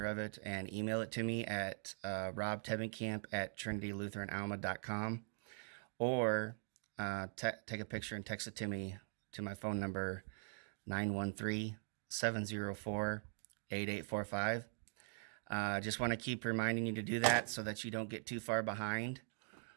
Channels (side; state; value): left; silent; digital silence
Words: of it and email it to me at robtevenkamp@trinitylutheranalma.com, or take a picture and text it to me to my phone number 913-704-8845. Just want to keep reminding you to do that so that you don't get too far behind.